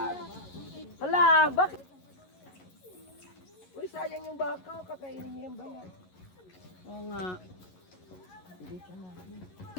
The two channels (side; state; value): right; late; 11 ms